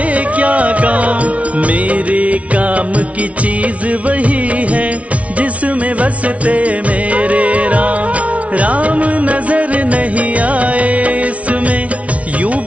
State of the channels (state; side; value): late; left; 0.065 ms